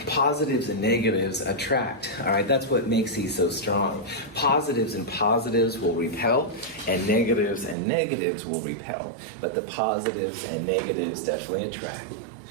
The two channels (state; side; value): drops out; left; at 7.8 s